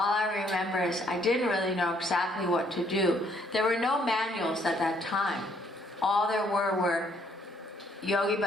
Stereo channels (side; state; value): both; normal; correlation 0.67